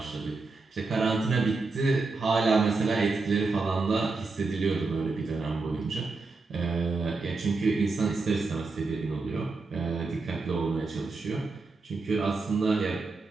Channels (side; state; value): left; quieter; 3.8 dB